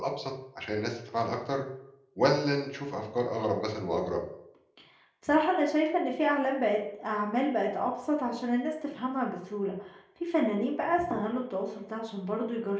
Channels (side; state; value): both; identical; correlation 1.00